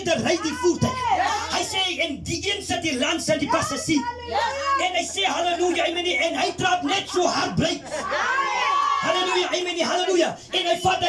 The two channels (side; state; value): both; identical; correlation 1.00